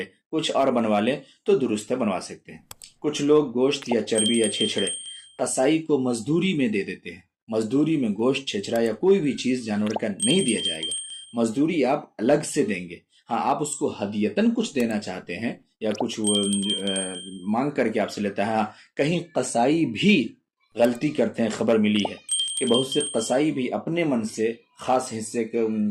کچھ اور بنوا لے تو درست ہے، بنوا سکتے ہیں۔ کچھ لوگ گوشت یا چربی یا چھچڑے قصائی کو مزدوری میں دے دیتے ہیں۔ مزدوری میں گوشت، چھچڑا یا کوئی بھی چیز جانور کا نہیں دیا جائے گا، مزدوری آپ الگ سے دیں گے۔ ہاں، آپ اس کو ہدیتاً کچھ دینا چاہتے ہیں یا کچھ مانگ کر کے آپ سے لیتا ہے۔ ہاں، کہیں قصائی بھی غلطی کرتے ہیں، خبر ملی ہے کہ بہت سے قصائی بھی اپنے من سے خاص حصے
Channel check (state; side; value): identical; both; correlation 1.00